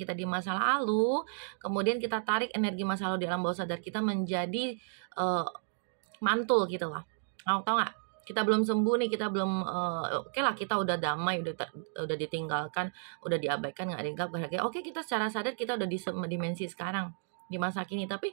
di masa lalu. Kemudian kita tarik energi masa lalu di alam bawah sadar kita menjadi mantul gitu lah. Tahu nggak? Kita belum sembuh nih, kita belum oke lah, kita udah damai, udah ditinggalkan, udah diabaikan, nggak dianggap berharga. Oke, kita secara sadar kita udah di dimensi sekarang, di masa kini, tapi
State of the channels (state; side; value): silent; left; digital silence